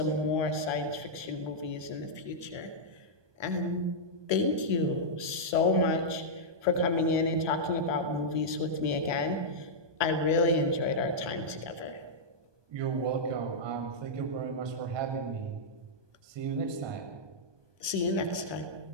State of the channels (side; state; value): left; late; 1.2 ms